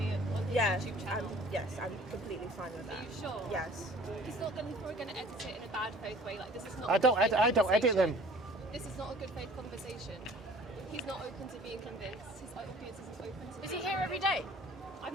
it on his Yeah. YouTube channel? Yes, I'm completely fine with Are that. you sure? Yes. He's not going to edit it in a bad faith way. Like this is not. I don't edit them. This is not a good faith conversation. He's not open to being convinced. His audience isn't open to. Is he here every day? I've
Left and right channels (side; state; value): both; normal; correlation 0.50